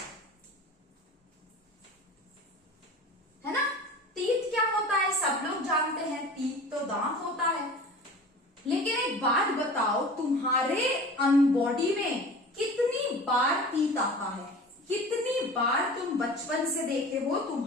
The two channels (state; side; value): normal; both; correlation 0.38